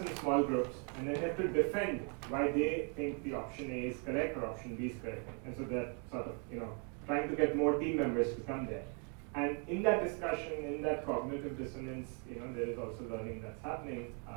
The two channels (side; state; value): left; quieter; 38.8 dB